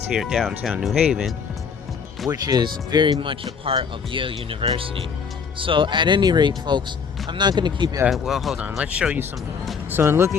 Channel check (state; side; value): quieter; right; 6.1 dB